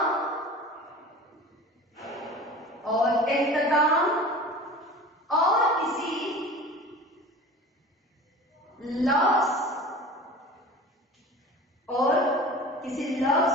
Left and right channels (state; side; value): normal; both; correlation 0.38